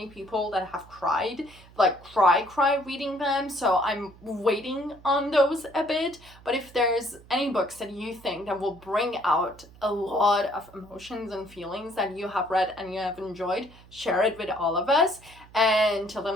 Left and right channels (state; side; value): noise; right; hum, 23 dB below the sound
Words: people that have cried, like cry reading them, so I'm waiting on those a bit. But if there's any books that you think that will bring out a lot of emotions and feelings that you have read and you have enjoyed, share it with all of us. And till the